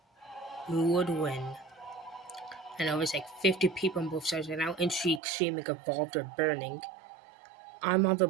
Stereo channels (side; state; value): left; drops out; at 5.2 s